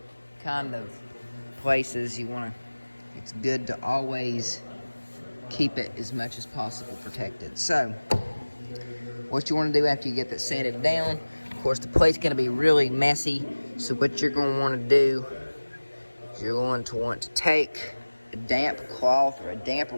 kind of places, it's good to always keep it as much as possible protected. So, what you want to do after you get that sanded down, of course the plate's going to be really messy, so what you're going to want to do is you're going to want to take a damp cloth or a damp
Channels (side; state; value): both; inverted; correlation -1.00